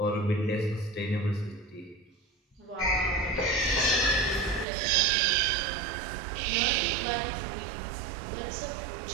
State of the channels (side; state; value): left; drops out; at 4.7 s